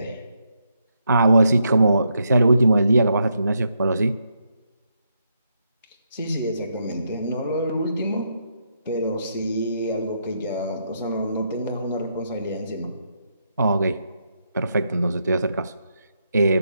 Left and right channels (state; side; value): inverted; both; correlation -0.80